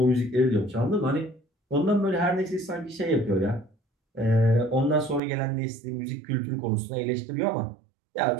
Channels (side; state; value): left; drops out; at 5.2 s